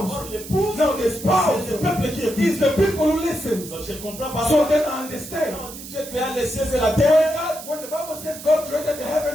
Or l'épouse. Now the spouse C'est le peuple qui écoute. is the people who listen. Donc, je comprends pas. So then I understand. Quand on dit Dieu créa les cieux et la terre, When the Bible says God created the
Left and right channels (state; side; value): noise; right; hiss, 13 dB below the sound